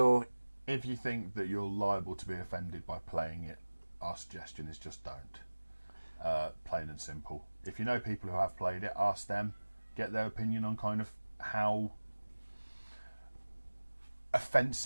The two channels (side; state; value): both; inverted; correlation -1.00